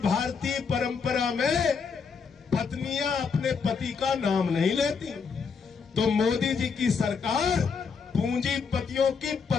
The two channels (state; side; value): quieter; right; 5.6 dB